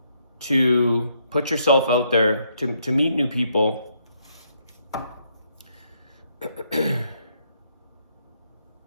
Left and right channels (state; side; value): inverted; both; correlation -0.74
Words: to put yourself out there, to meet new people.